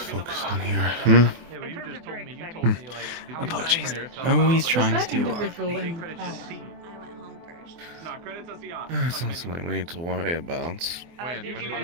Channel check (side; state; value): left; late; 24 ms